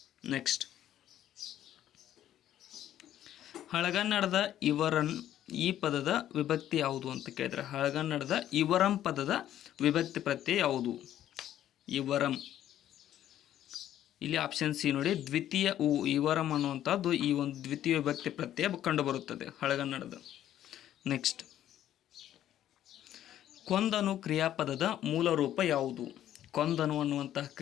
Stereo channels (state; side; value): quieter; right; 11.8 dB